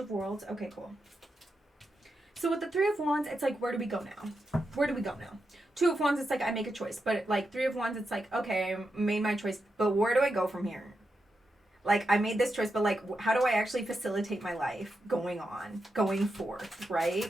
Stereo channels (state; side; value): normal; both; correlation 0.87